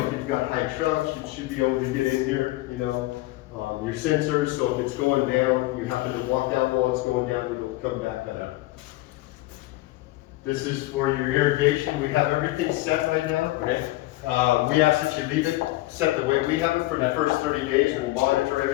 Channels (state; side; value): quieter; right; 18.7 dB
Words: if you've got high trucks, you should be able to get in here, your sensors, so if it's going down, you happen to walk out while it's going down, it'll come back up. This is for your irrigation. We have everything set right now. Okay. We ask that you leave it set the way we have it for the first 30 days, and we'll monitor